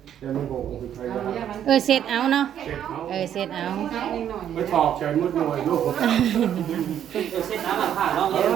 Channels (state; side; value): quieter; left; 10.0 dB